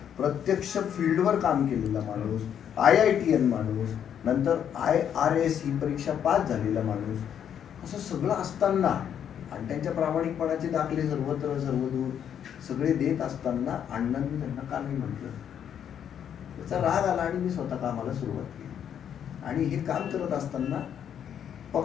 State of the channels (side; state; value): right; quieter; 9.0 dB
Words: प्रत्यक्ष फील्डवर काम केलेला माणूस, IITN माणूस, नंतर IRS ही परीक्षा पास झालेला माणूस, असं सगळं असताना आणि त्यांच्या प्रामाणिकपणाचे दाखले सर्वत्र सर्वदूर सगळे देत असताना अण्णांनी त्यांना का नाही म्हटलं? त्याचा राग आला आणि मी स्वतः कामाला सुरुवात केली. आणि हे काम करत असताना